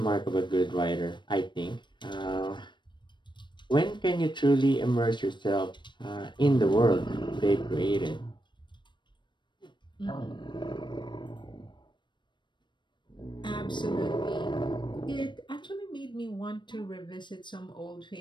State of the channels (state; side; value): late; right; 0.22 ms